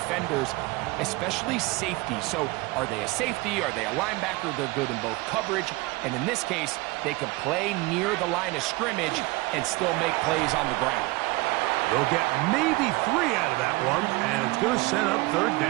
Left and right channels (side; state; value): left; quieter; 22.4 dB